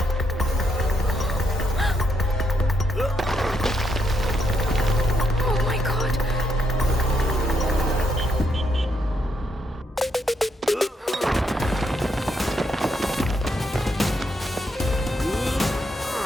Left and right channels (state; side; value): normal; both; correlation 0.77